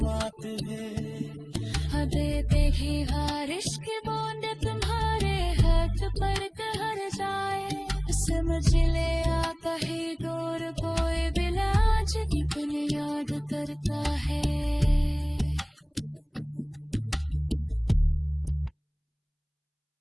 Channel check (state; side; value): identical; both; correlation 1.00